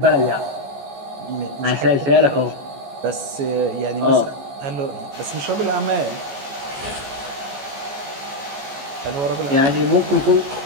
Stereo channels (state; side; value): late; left; 14 ms